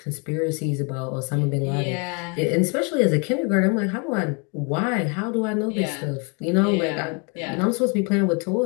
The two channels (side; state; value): right; quieter; 34.2 dB